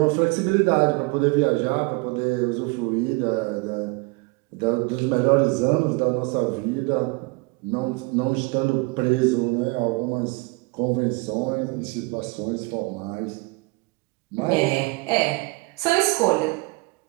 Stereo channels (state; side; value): quieter; left; 27.0 dB